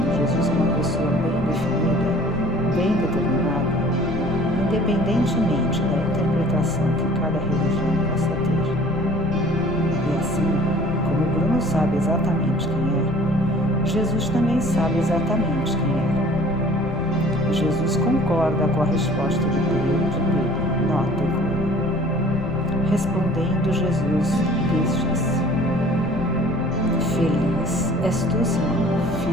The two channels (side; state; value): left; noise; rumble, 9 dB below the sound